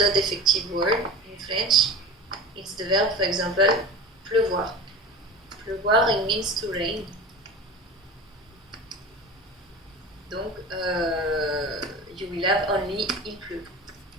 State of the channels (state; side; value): normal; both; correlation 0.33